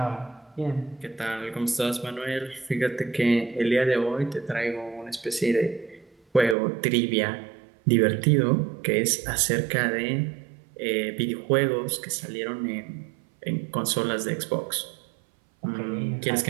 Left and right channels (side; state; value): left; drops out; at 6.6 s